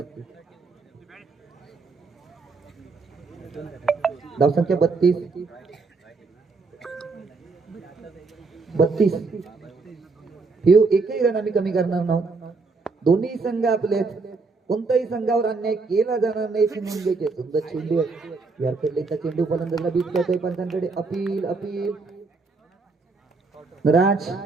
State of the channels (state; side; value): quieter; left; 4.1 dB